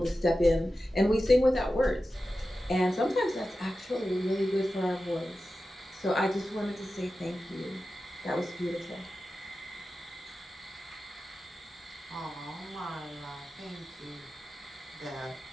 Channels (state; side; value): normal; both; correlation 0.93